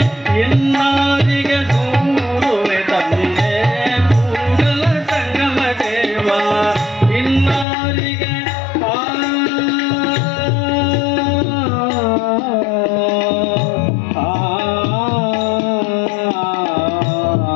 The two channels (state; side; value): drops out; right; at 7.7 s